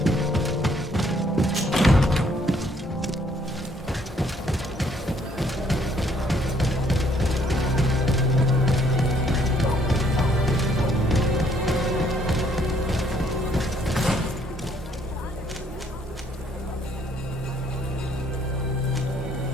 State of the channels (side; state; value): both; normal; correlation 0.66